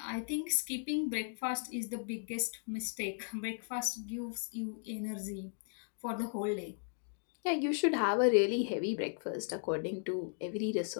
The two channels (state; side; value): silent; right; 54 dB below the other